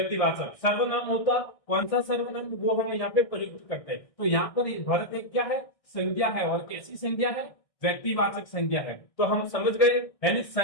सर्वनाम होता कौन सा सर्वनाम, वो हम यहाँ पे प्रयुक्त करते हैं। तो यहाँ पर भरत एक क्या है, संज्ञा है। और कैसी संज्ञा है, व्यक्तिवाचक संज्ञा है। तो हम समझ गए। यानी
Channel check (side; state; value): right; late; 1.6 ms